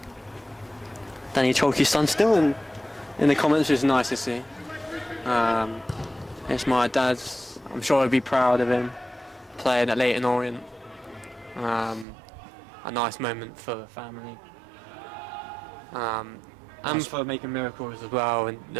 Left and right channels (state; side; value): drops out; left; at 12.1 s